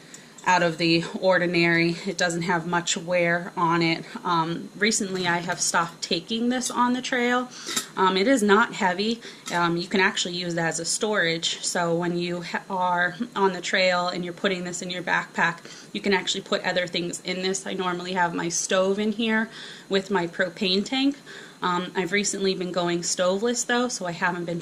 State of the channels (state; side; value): identical; both; correlation 1.00